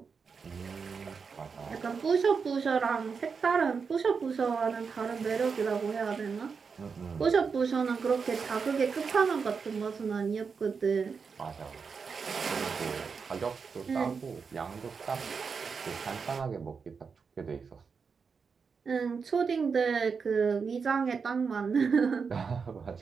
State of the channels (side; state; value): left; quieter; 5.5 dB